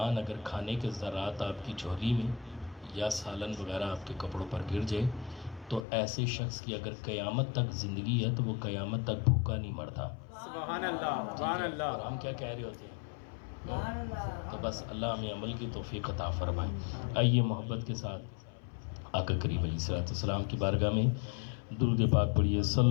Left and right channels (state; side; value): drops out; right; at 5.8 s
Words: اگر کھانے کے ذرات آپ کی جھولی میں یا سالن وغیرہ آپ کے کپڑوں پر گر جائے تو ایسے شخص کی اگر قیامت تک زندگی ہے تو وہ قیامت تک بھوکا نہیں مرتا۔ سبحان اللہ، سبحان اللہ۔ اور ہم کیا کہہ رہے ہوتے ہیں؟ تو بس اللہ ہمیں عمل کی توفیق عطا فرمائے۔ آئیے محبت کے ساتھ آقا کریم علیہ الصلوۃ والسلام کی بارگاہ میں درود پاک پڑھیے،